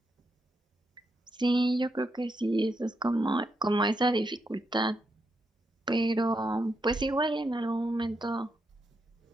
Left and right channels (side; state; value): both; normal; correlation 0.82